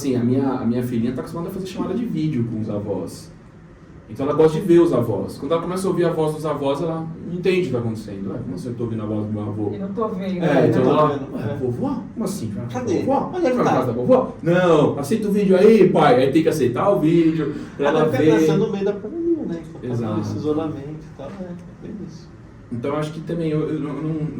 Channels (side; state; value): both; identical; correlation 1.00